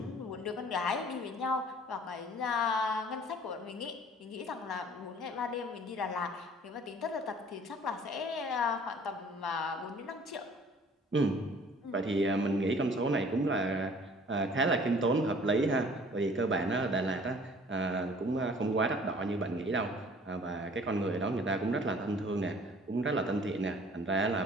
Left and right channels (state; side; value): normal; both; correlation 0.52